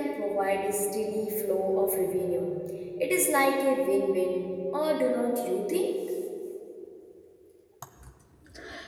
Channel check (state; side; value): identical; both; correlation 1.00